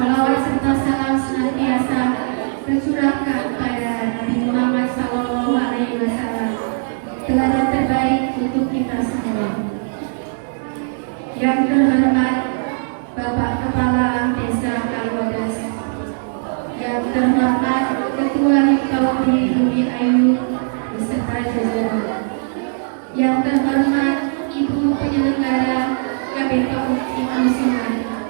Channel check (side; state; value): left; silent; 57 dB below the other